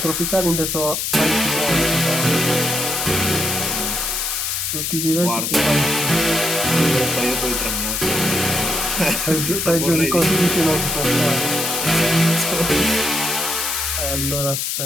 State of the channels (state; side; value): noise; left; hiss, 1 dB below the sound